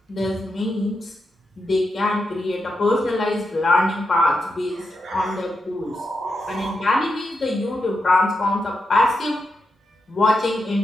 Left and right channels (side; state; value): both; normal; correlation 0.86